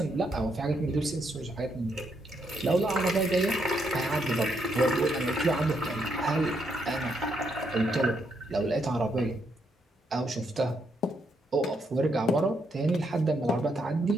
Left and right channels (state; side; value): normal; both; correlation 0.77